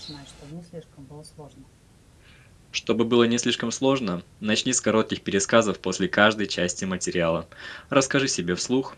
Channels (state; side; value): identical; both; correlation 1.00